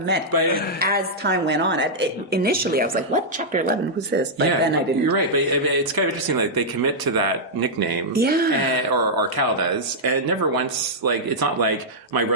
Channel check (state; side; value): normal; both; correlation -0.08